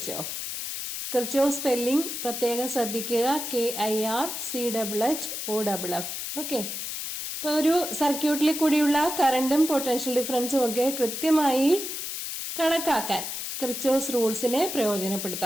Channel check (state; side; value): noise; left; hiss, 5 dB below the sound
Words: കിർച്ചോഫ് സ്പെല്ലിംഗ് പ്രത്യേകം ശ്രദ്ധിക്കുക. KIRCHHOFF. ഓക്കെ, ഇപ്പൊ ഒരു സർക്യൂട്ടിൽ കൂടിയുള്ള കറണ്ടും പൊട്ടൻഷ്യൽ ഡിഫറൻസും ഒക്കെ കൃത്യമായി കണക്കാക്കാൻ കിർച്ചോഫ് റൂൾസിനെ